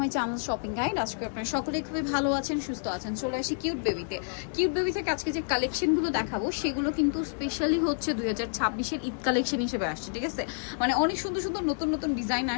channel shopping guide. আজকে আপনারা সকলেই খুবই ভালো আছেন, সুস্থ আছেন। চলে আসি কিউট বেবিতে। কিউট বেবি থেকে আজকে যে কালেকশনগুলো দেখাবো সেগুলো কিন্তু স্পেশালি হচ্ছে 2026-এর ঈদ কালেকশন হিসেবে আসছে, ঠিক আছে? মানে অনেক সুন্দর সুন্দর নতুন নতুন ডিজাইন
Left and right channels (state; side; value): silent; right; digital silence